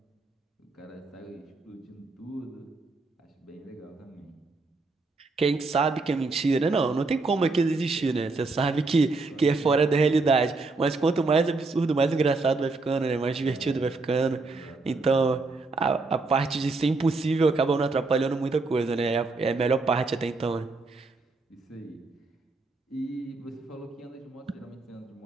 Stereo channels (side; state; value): left; quieter; 3.6 dB